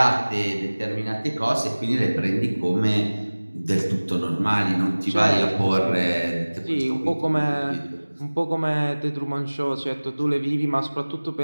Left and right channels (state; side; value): inverted; both; correlation -1.00